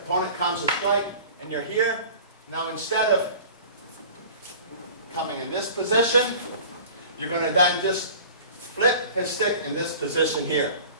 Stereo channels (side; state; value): both; inverted; correlation -0.43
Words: comes to strike, and you're here, now instead of coming in this position, you're going to then just flip his stick in this position here.